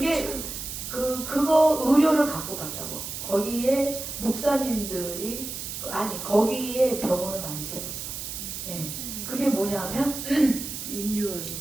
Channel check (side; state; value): right; noise; hiss, 7 dB below the sound